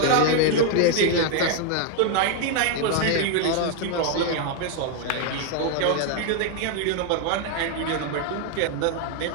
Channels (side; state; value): both; different; correlation 0.01